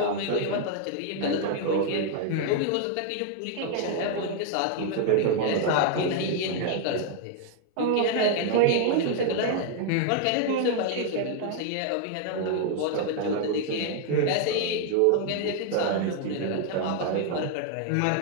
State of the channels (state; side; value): different; both; correlation 0.00